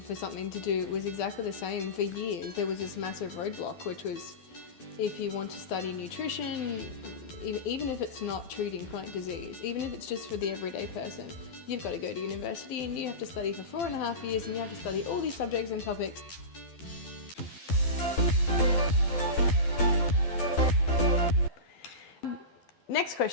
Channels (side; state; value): right; late; 12 ms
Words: something to do, it was exactly the same. For years, there was this massive roadblock, which was if you want to study nutrition, even if it's not treating chronic disease, even if it's just for the everyday person, you've got to go to university and you have to study for 4.5 years and you have to study all these subjects and topics. Next